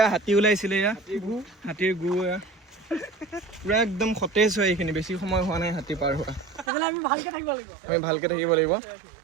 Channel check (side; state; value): left; drops out; at 6.7 s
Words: হাতী ওলাইছিলে, এয়া হাতীৰ গু। এয়া পুৰা একদম সতেজ হয়। এইখিনি বেছি সময় হোৱা নাই হাতী পাৰ হোৱা। আমি ভালকে থাকিব লাগিব।